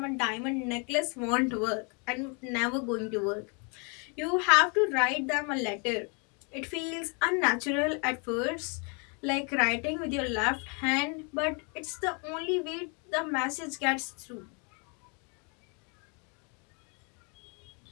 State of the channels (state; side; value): quieter; right; 35.3 dB